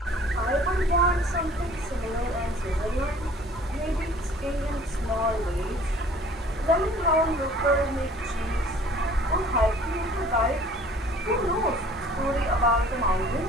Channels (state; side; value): normal; both; correlation 0.52